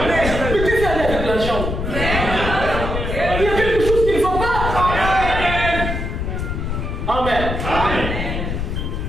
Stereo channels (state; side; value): noise; left; rumble, 3 dB below the sound